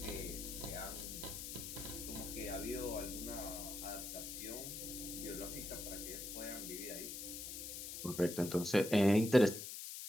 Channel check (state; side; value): noise; left; hiss, 7 dB below the sound